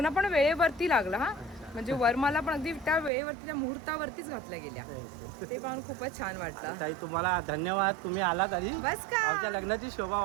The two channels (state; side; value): drops out; left; at 3.1 s